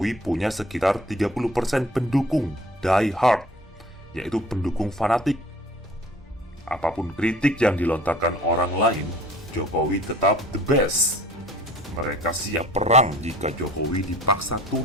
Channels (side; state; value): both; normal; correlation 0.48